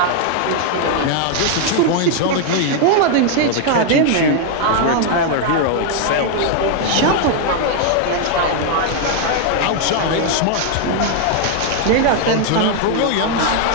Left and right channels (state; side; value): different; both; correlation 0.00